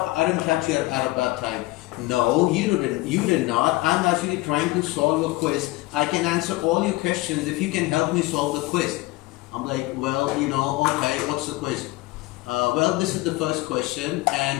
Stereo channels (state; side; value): quieter; right; 20.2 dB